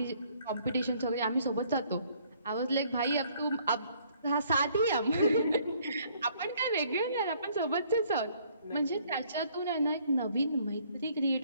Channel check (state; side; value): inverted; both; correlation -0.63